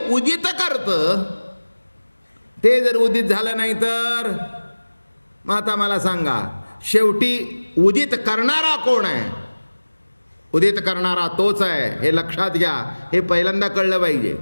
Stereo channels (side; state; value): both; inverted; correlation -1.00